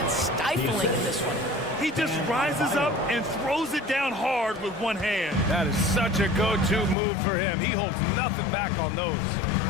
stifling in this one. He just rises up and throws it down hard with one hand. That is such a go-to move for him. He holds nothing back on those.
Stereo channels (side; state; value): right; drops out; at 7.0 s